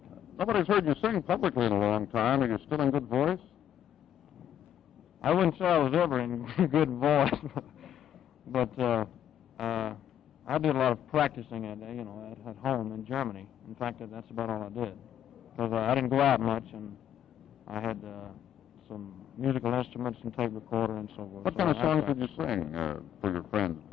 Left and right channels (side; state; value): right; quieter; 10.2 dB